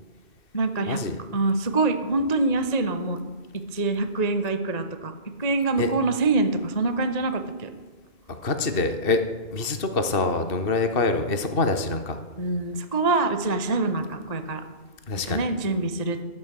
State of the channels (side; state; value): right; late; 2.6 ms